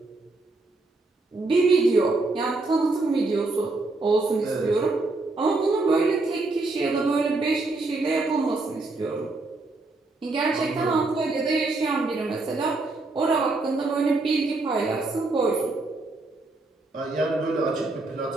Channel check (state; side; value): quieter; left; 3.3 dB